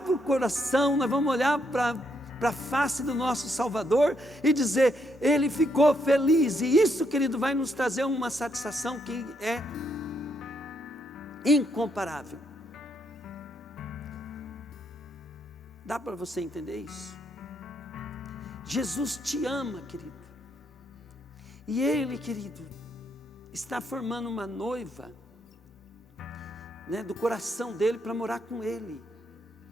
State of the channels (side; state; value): both; normal; correlation 0.76